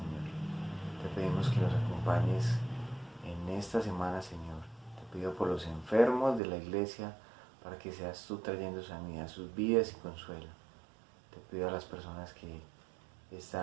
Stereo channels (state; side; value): drops out; left; at 6.4 s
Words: Te pedimos que nos acompañes en esta semana, Señor. Te pido por los enfermos de la iglesia para que seas tú trayendo sanidad a sus vidas y consuelo. Te pido a las personas que